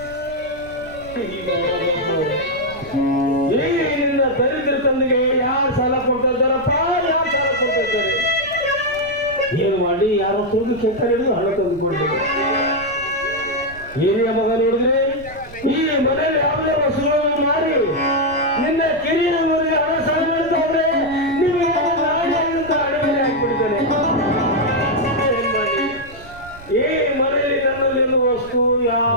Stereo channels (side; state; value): right; noise; rumble, 19 dB below the sound